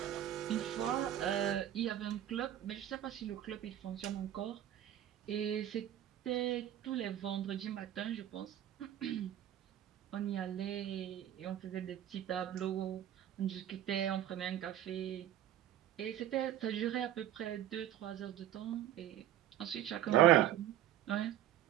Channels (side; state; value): left; quieter; 11.9 dB